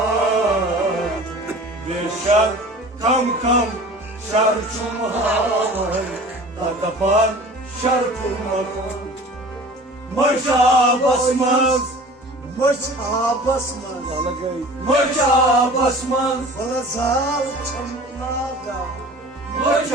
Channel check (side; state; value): both; normal; correlation 0.42